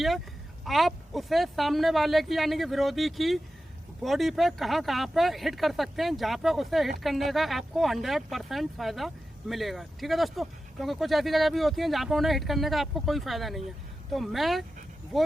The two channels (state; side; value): normal; both; correlation 0.93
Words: है आप उसे सामने वाले की यानी कि विरोधी की बॉडी पे कहां पे हिट कर सकते हैं, जहां पे उसे हिट करने का आपको 100% फ़ायदा मिलेगा। ठीक है दोस्तों, क्योंकि कुछ ऐसी जगह भी होती हैं जहां पे उन्हें हिट करने का आपको कोई फ़ायदा नहीं है। तो मैं